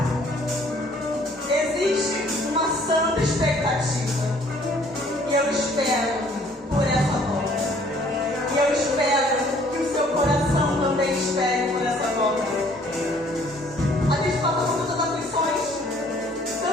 Existe uma santa expectativa. E eu espero por essa volta. E eu espero que o seu coração também espere por essa volta. A gente passa por tantas aflições,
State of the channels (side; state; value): both; normal; correlation 0.59